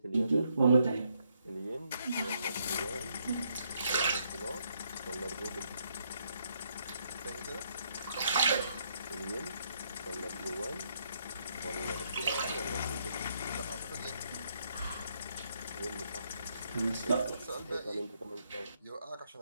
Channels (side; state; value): both; inverted; correlation -0.73